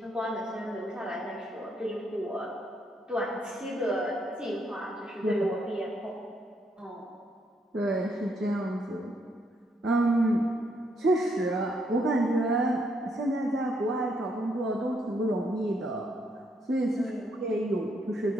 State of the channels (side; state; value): both; normal; correlation 0.74